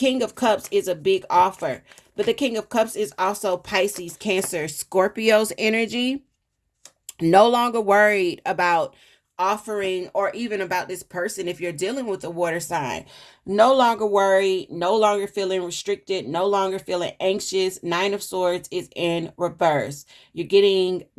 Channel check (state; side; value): identical; both; correlation 1.00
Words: of Cups is a big offer, but the King of Cups is also Pisces, Cancer, Scorpio's energy. No longer worried about offering or even about this person if you're dealing with a water sign. No longer worried, no longer feeling restricted, no longer feeling anxious. Nine of Swords is in reverse. You're getting